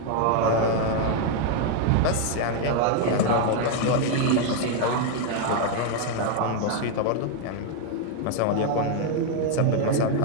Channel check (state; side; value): different; both; correlation 0.01